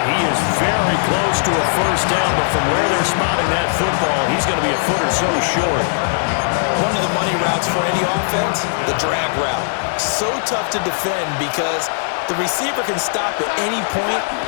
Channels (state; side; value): silent; right; 67 dB below the other